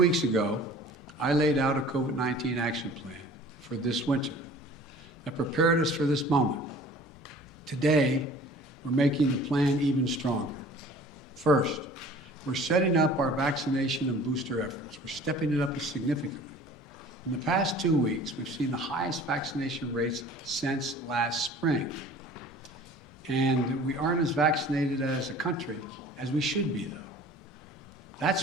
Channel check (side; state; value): both; normal; correlation 0.47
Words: ago, I laid out a COVID-19 action plan for this winter that prepared us for this moment. Today, we're making the plan even stronger. First, we're setting up our vaccination and booster efforts. We're stepping it up significantly. In the past 2 weeks, we've seen the highest vaccination rates since last spring. And we aren't as vaccinated as a country as we should be, though.